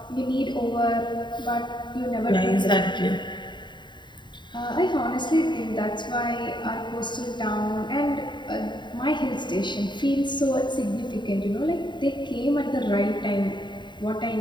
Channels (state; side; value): late; right; 0.22 ms